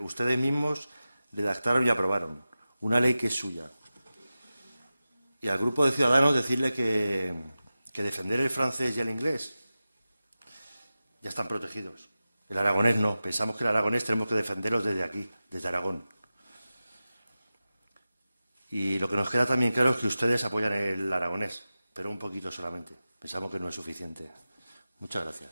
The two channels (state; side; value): inverted; both; correlation -0.95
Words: mismos redactaron y aprobaron. Una ley que es suya. Y al Grupo de Ciudadanos decirle que defender el francés y el inglés ya están protegidos. El aragonés no. Pensamos que el aragonés tenemos que defenderlos desde aquí, desde Aragón. Y lo que nos queda también claro es que ustedes apoyan el aragonés, pero un poquito solamente. Pensamos que no es suficiente. Muchas